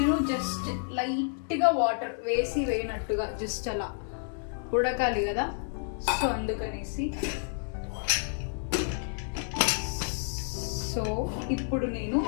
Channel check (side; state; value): right; silent; 58 dB below the other